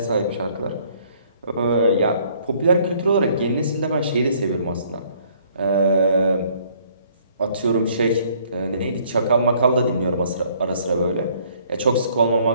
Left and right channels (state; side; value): inverted; both; correlation -0.62